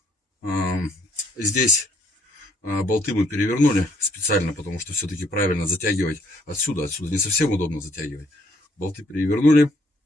Здесь болты мы перевернули специально, потому что все-таки правильно затягивать отсюда. Отсюда не совсем удобно затягивать. Болты перевернули.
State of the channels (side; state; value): both; normal; correlation 0.67